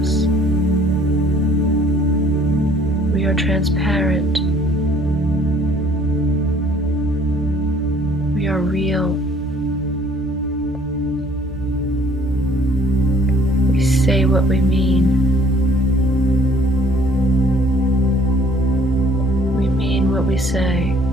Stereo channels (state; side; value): normal; both; correlation 0.58